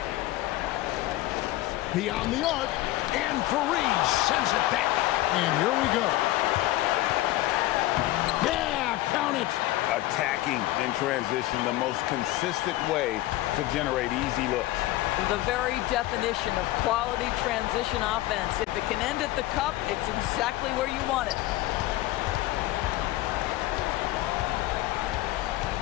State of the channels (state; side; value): quieter; right; 16.7 dB